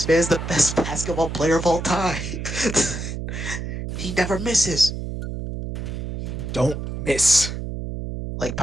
man's the best basketball player of all time. He never misses. Don't miss. Like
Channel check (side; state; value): right; noise; hum, 6 dB below the sound